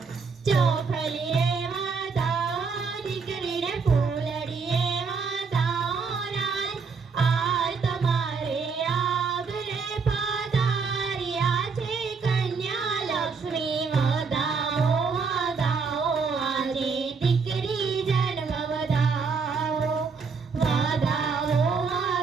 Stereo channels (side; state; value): left; quieter; 5.1 dB